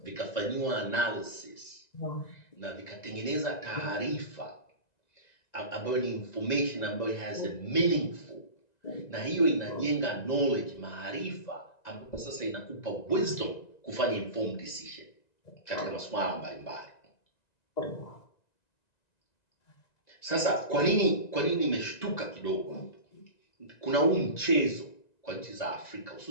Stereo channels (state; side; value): late; right; 1.9 ms